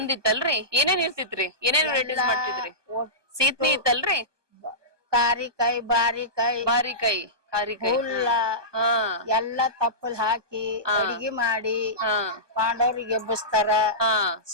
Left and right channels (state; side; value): late; left; 1.2 ms